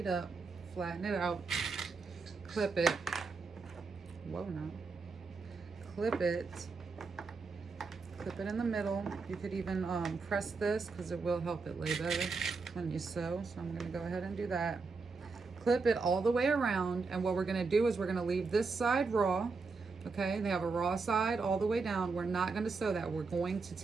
up, flatten it out, clip it. Whoa, no. Clip it in the middle. You could even press this, because it will help it lay better when you sew. So I'm going to go ahead and do that. Clip it all the way around, and what we're going to do is we're going to leave this side raw. Okay, they have a raw side all the way down. We're not going to sew that. We're going to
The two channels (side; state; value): left; quieter; 4.4 dB